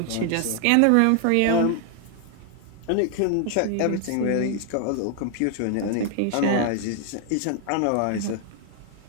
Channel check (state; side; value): different; both; correlation 0.00